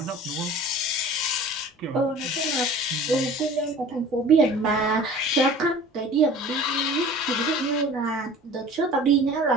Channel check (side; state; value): both; normal; correlation 0.43